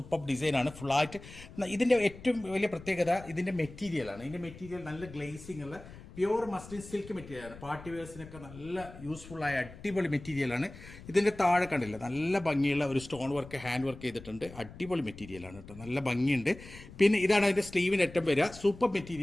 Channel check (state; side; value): noise; left; rumble, 17 dB below the sound